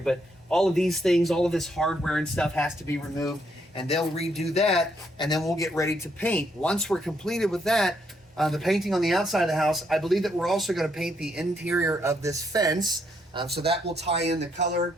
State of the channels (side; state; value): both; normal; correlation 0.74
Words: but all of these things, all of this hardware and stuff has to be removed, and they'll redo that, and then we'll get ready to paint. Once we're completed with that, the painting on the outside of the house, I believe that we're also going to paint the interior of this fence, so that will tie in the color.